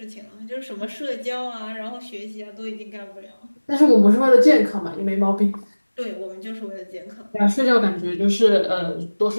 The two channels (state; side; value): inverted; both; correlation -1.00